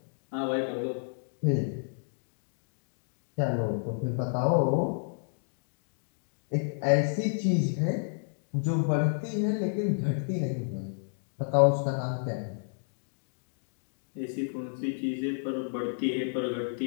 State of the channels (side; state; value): right; silent; digital silence